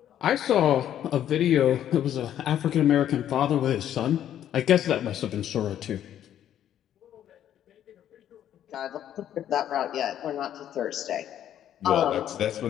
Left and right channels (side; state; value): right; quieter; 10.8 dB